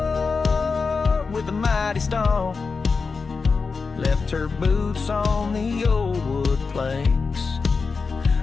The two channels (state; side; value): quieter; right; 4.7 dB